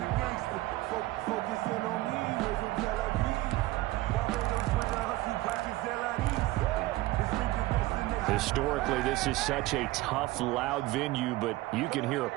Historically, this is such a tough, loud venue, but you can hear a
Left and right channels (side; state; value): left; quieter; 18.3 dB